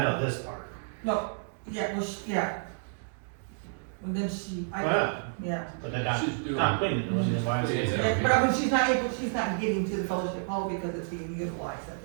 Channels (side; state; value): left; silent; digital silence